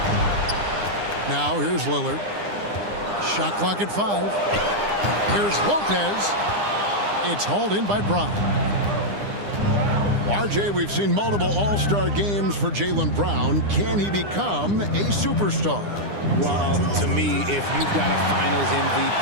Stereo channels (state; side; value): late; left; 9.9 ms